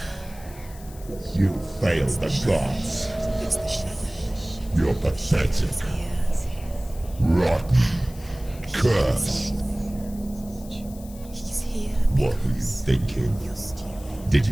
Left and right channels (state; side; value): noise; left; hiss, 20 dB below the sound